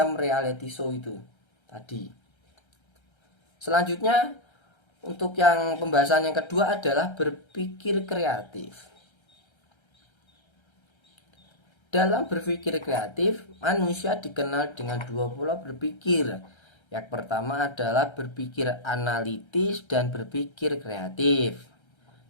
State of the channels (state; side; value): late; right; 1.3 ms